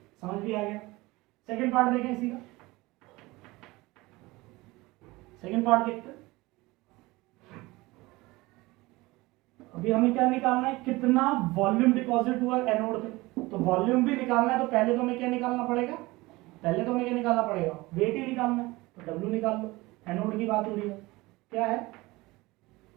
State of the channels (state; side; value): quieter; left; 21.3 dB